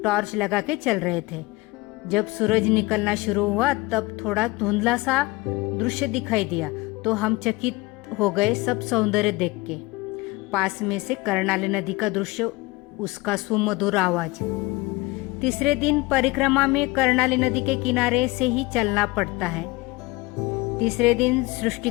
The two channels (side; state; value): right; quieter; 22.0 dB